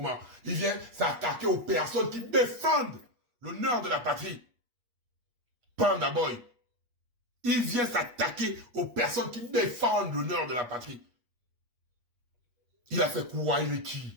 Il vient s'attaquer aux personnes qui défendent l'honneur de la patrie. Panda Boy. Il vient s'attaquer aux personnes qui défendent l'honneur de la patrie. Il a fait quoi, il est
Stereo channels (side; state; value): left; late; 8.4 ms